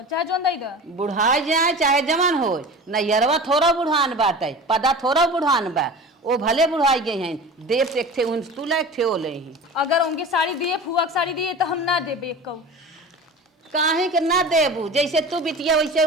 चाहे जोन दई दा बुढ़ाई जाए चाहे जवान हो नैयरवा थोड़ा बुढ़ान बाटे पदा थोड़ा बुढ़ान बा वो भले बुढ़ाई गए हैं देव से एक थे उन तू ला एक थे ओ ले ही अगर उनके साड़ी दिए फुआ की साड़ी दिए तो हम ना देबे एक कहू काहे के ना देबू जैसे तू बिटिया वैसे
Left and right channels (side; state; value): both; normal; correlation 0.35